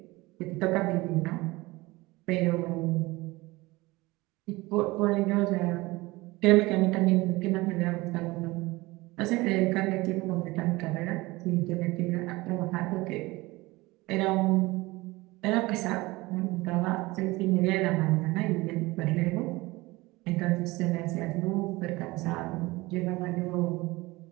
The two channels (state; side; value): quieter; left; 21.4 dB